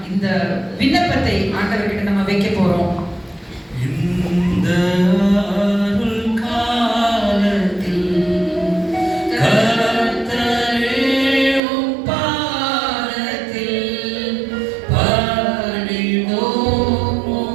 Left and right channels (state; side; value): drops out; left; at 11.6 s